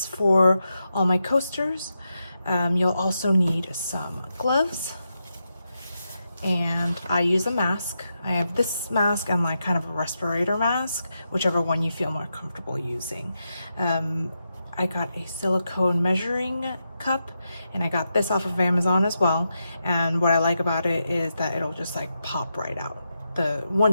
for all my coasters. You'll also need some gloves. And I use a mask. I have this mask and like kind of a respirator mask, whichever one you feel more comfortable using. I got a silicone measuring cup, and I got this off of Amazon as well. And what I like about it is that it'll just like pop right out.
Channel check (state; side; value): inverted; both; correlation -0.86